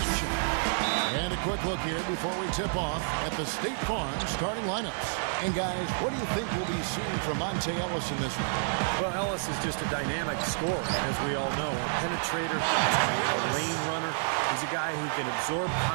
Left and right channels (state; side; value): silent; left; digital silence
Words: And a quick look here before we tip off at the State Farm starting lineups. And guys, what do you think we'll be seeing from Monte Ellis in this one? Well, Ellis is just a dynamic scorer, as we all know. A penetrator, a lane runner. He's a guy who can absorb